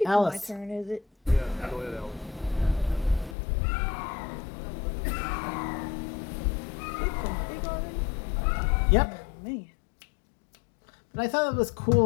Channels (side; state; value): right; drops out; at 3.4 s